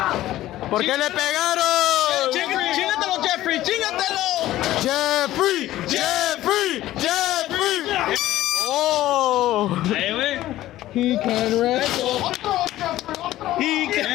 ¿Por qué le pegaron? ¡Chingatelo, Jeffrey! ¡Chingatelo! Jeffrey! Jeffrey! Jeffrey! Oh! Ahí, güey. He can wrestle. He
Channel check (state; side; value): quieter; right; 14.8 dB